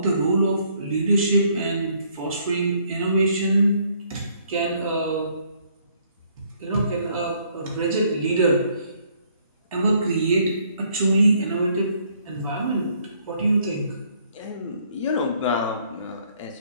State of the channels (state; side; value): inverted; both; correlation -0.66